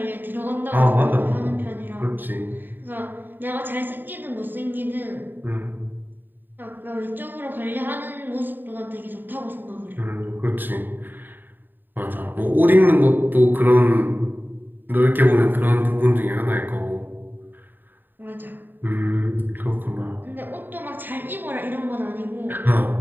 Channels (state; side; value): late; left; 0.092 ms